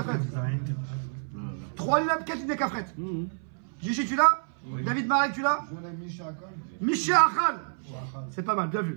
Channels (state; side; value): silent; left; 59 dB below the other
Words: 3 lignes, 4 lignes de Kafret. Gigi, tu l'as? David Marek, tu l'as? Misha Achal. C'est pas mal, bien